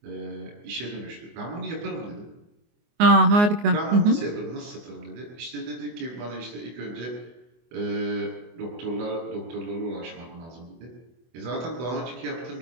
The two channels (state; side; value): late; left; 24 ms